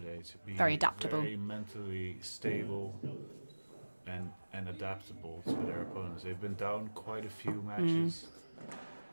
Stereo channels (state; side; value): inverted; both; correlation -1.00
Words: to be Very adaptable. very mentally stable and adaptable to their opponents. They've been down quite a few matches.